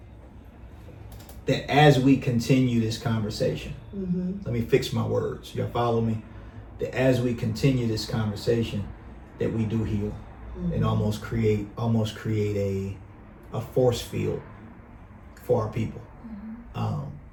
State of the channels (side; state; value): both; identical; correlation 1.00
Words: that as we continue this conversation, let me fix my words. Y'all follow me? That as we continue this conversation, that we do heal and almost create a force field for our people.